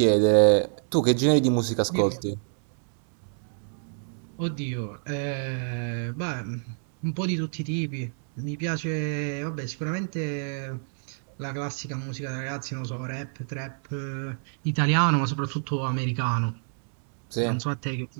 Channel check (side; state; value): left; silent; digital silence